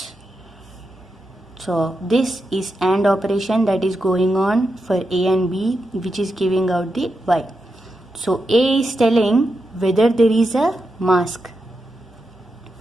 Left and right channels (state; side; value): normal; both; correlation 0.87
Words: So this is AND operation that is going on for A and B, which is giving out the Y. So A is telling whether there is a mask.